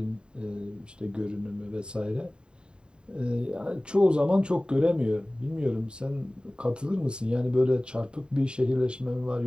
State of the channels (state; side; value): late; left; 0.050 ms